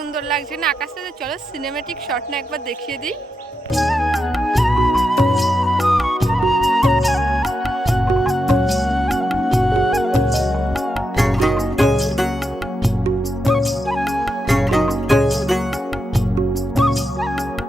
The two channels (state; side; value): normal; both; correlation 0.86